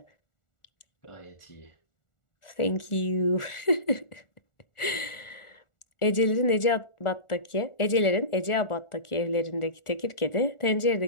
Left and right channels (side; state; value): right; late; 1.4 ms